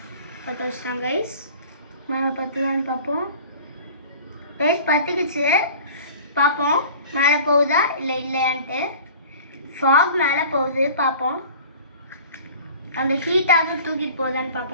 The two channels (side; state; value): both; inverted; correlation -0.43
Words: பற்ற வச்சுட்டான் கைஸ். மேலே பற்றுதான்னு பார்ப்போம் கைஸ். பற்றுக்குச்சு, பார்ப்போம் மேலே போகுதா இல்லை இல்லையான்ட்டு. ஃபாக் மேலே போகுது, பார்ப்போம். அந்த ஹீட்டாக தூக்கிட்டு போகுதான்னு